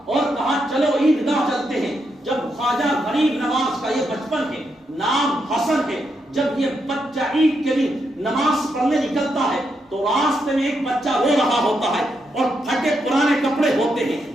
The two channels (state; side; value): normal; both; correlation 0.81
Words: اور کہا چلو عیدگاہ چلتے ہیں. جب خواجہ غریب نواز کا یہ بچپن ہے, نام حسن ہے, جب یہ بچہ عید کے دن نماز پڑھنے نکلتا ہے تو راستے میں ایک بچہ رو رہا ہوتا ہے اور پھٹے پرانے کپڑے ہوتے ہیں,